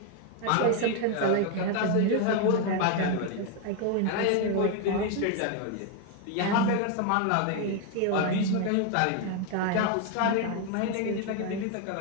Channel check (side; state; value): both; different; correlation 0.01